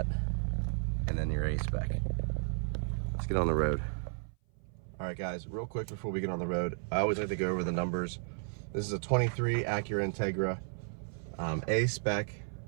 And then your A-Spec. Let's get on the road. All All right, guys, real quick before we get on the road, I always like to go over the numbers. This is a 23 Acura Integra, A-Spec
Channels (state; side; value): silent; left; 55 dB below the other